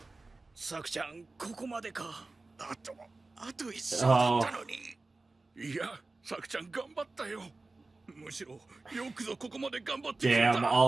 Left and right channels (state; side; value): quieter; left; 3.4 dB